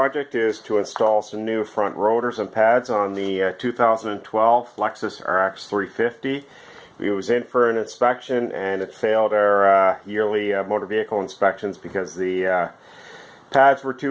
is to install some new front rotors and pads on the 2012 Lexus RX 350. It was in for an inspection and it failed our yearly motor vehicle inspections because the pads were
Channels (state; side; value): identical; both; correlation 1.00